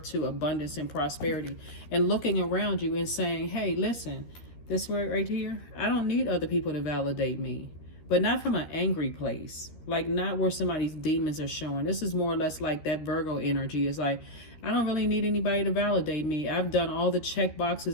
to abundance and prosperity, and looking around you and saying, hey, listen, this right here, I don't need other people to validate me. But not from an angry place, like not where somebody's demons are showing. This is more or less like that Virgo energy. Is like, I don't really need anybody to validate me. I've done all the check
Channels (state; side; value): late; right; 13 ms